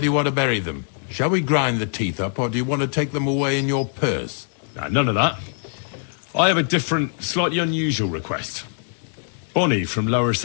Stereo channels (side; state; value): right; silent; digital silence